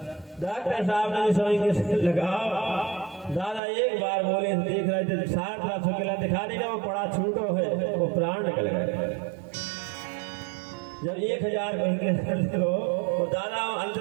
डॉक्टर साहब ने समझ लगा, दादा एक बार बोले, देख रहे थे 60 लाख रुपया दिखा देगा, वो पड़ा छूटो है, वो प्राण निकल गए। जब 1000 कहेंगे तो दादा अंत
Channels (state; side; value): drops out; left; at 3.6 s